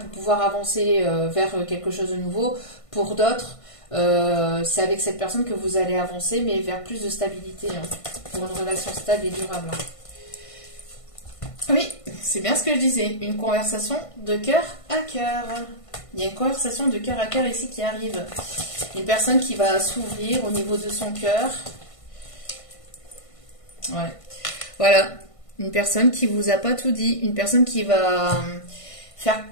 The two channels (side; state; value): right; late; 1.5 ms